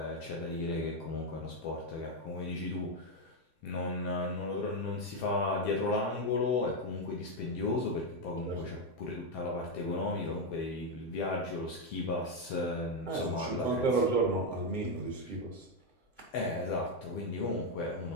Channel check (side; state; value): right; late; 7.7 ms